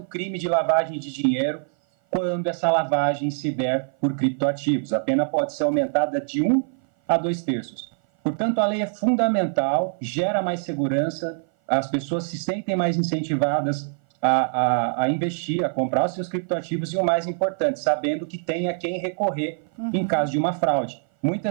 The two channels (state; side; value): silent; left; 57 dB below the other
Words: crime de lavagem de dinheiro quando essa lavagem se der por criptoativos. A pena pode ser aumentada de 1 a 2/3. Portanto, a lei é fundamental, gera mais segurança, as pessoas se sentem mais incentivadas a investir, a comprar os seus criptoativos e, o mais importante, sabendo que tem a quem recorrer em caso de uma fraude.